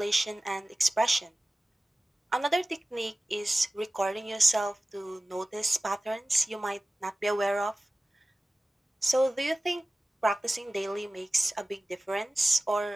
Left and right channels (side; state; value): both; normal; correlation 0.97